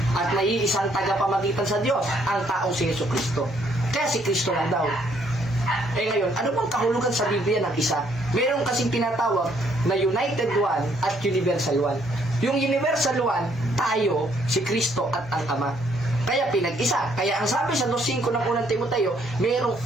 at may iisang tagapamagitan sa Diyos, ang taong si Jesucristo. Kaya si Kristo lang daw. Ngayon, ano bang kahulugan sa Biblia ng isa? Meron kasing tinatawag na United One at Universal One. Yung Universal One, tayo, si Kristo at ang Ama. Kaya pinag-isa. Kaya ang sabi sa 2:5 ng unang Timoteo, mayroong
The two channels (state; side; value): normal; both; correlation 0.68